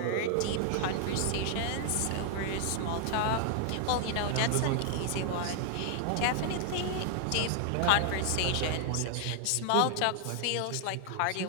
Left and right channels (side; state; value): both; different; correlation -0.01